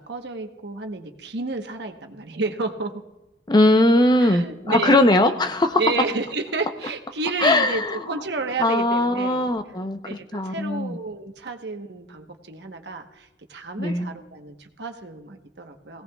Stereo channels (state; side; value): normal; both; correlation 0.49